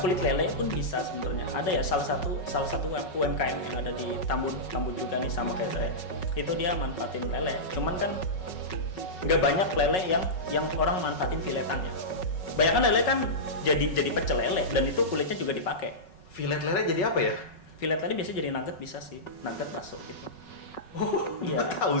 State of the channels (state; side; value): late; right; 5.4 ms